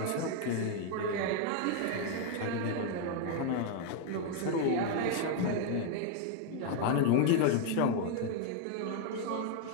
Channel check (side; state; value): both; different; correlation 0.00